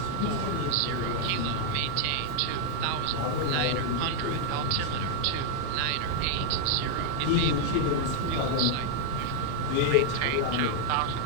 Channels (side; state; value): both; different; correlation 0.00